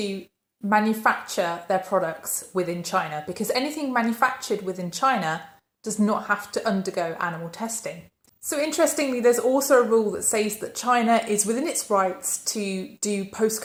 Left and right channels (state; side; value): identical; both; correlation 1.00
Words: manufacture their products within China, because anything manufactured within China does not have to undergo animal testing. So interestingly, there's also a rule that says that China is within its rights to do